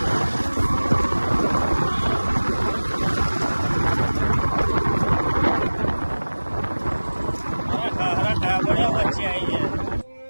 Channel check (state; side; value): inverted; both; correlation -1.00